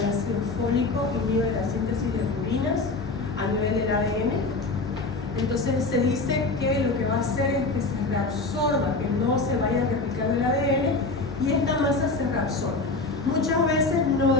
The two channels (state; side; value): quieter; right; 3.6 dB